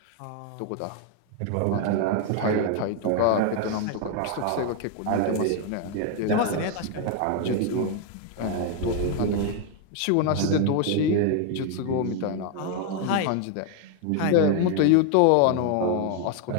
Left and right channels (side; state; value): both; different; correlation 0.01